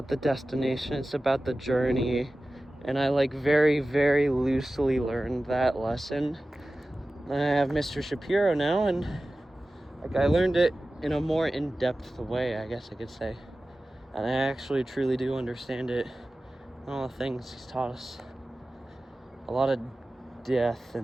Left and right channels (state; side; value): normal; both; correlation 0.96